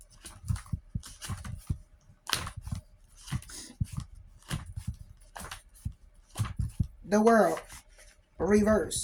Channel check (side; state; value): both; identical; correlation 1.00